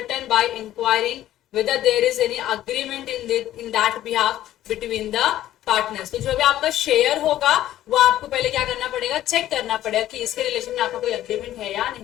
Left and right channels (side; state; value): right; quieter; 13.2 dB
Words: by inquiring whether there is any agreement in that behalf between the partners। तो जो भी आपका शेयर होगा वो आपको पहले क्या करना पड़ेगा? चेक करना पड़ेगा कि इसके रिलेशन में आपका कोई अग्रीमेंट है या